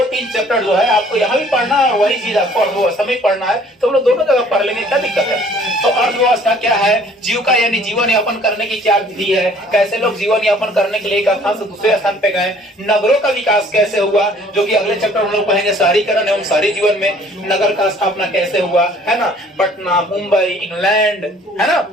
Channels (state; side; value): normal; both; correlation 0.56